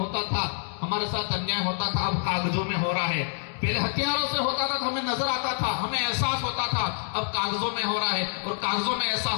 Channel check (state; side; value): silent; right; 60 dB below the other